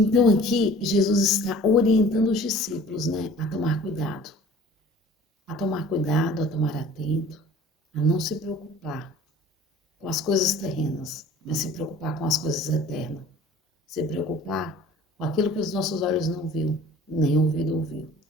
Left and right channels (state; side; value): normal; both; correlation 0.47